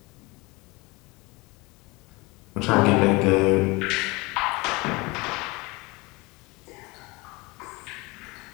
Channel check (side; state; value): right; quieter; 24.7 dB